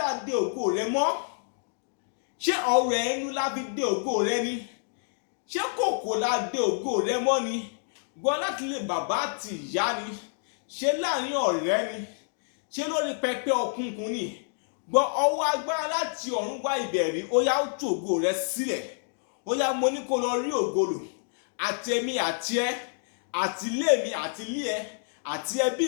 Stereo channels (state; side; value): silent; right; digital silence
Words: a de ògo rẹ mọ́. Ṣé ọ̀rọ̀ ẹnu la fi de ògo rẹ ni? Ṣé kòkò la de ògo rẹ mọ́ ni? Gbọ́ láti ilé bàbá àti ìyá ni? Ṣé láàrin ọ̀rẹ́ ni? Ṣé lórí pẹpẹ òkùnkùn ni? Gbọ́ ọwọ́ agbára láti ọ̀run wá ìbẹ̀rí ó yá ó tú ògo rẹ sílẹ̀. Ó yá mo ní kó lọ rí ògo lò. Àti èmi àti ẹ, àti ilé mi àti ilé ẹ, àti ẹbí